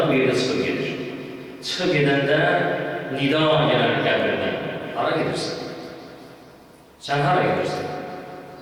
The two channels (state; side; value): identical; both; correlation 1.00